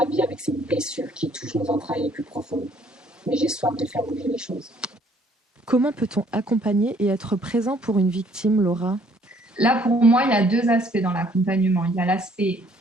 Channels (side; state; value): both; normal; correlation 0.62